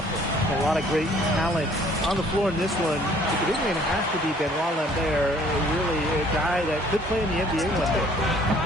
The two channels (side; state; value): both; normal; correlation 0.58